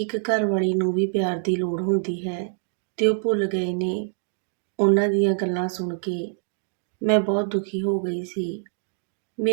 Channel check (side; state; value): left; silent; digital silence